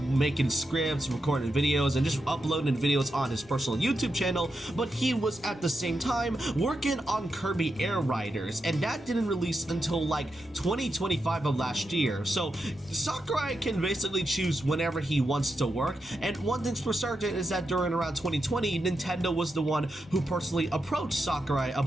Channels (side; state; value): both; normal; correlation 0.87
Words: scripts, recording videos, and just uploading videos on his personal YouTube channel, but he was at the same time working on Kirby Air Riders, and that didn't release until like 2025 of last year. So Sakurai can basically choose whenever he wants to work, and one thing's for certain is that during around 2020, Nintendo was the one who personally approached Sakurai